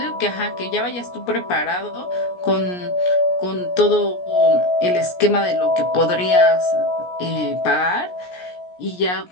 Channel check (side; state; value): right; late; 17 ms